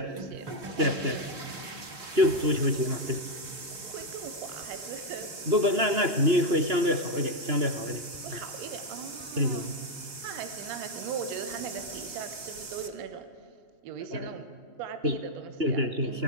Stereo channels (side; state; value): left; late; 3.5 ms